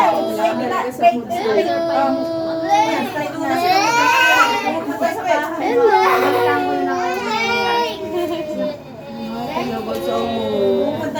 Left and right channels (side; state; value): both; identical; correlation 1.00